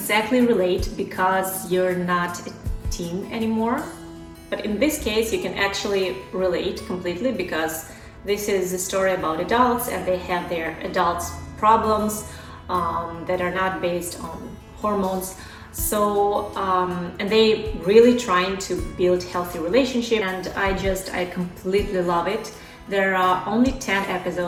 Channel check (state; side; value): identical; both; correlation 1.00